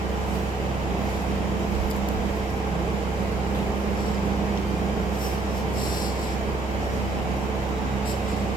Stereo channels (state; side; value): quieter; left; 3.4 dB